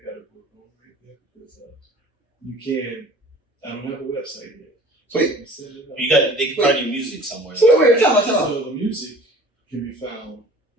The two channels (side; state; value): both; normal; correlation 0.46